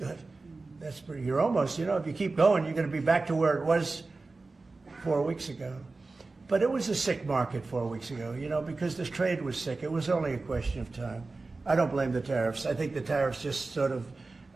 You're almost, if you keep going, you're going to be back to where it was 4 weeks ago. But it was a sick market 4 weeks ago, because this trade was sick. It was only a question of time. I don't blame the tariffs. I think the tariffs just sort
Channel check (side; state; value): left; quieter; 3.6 dB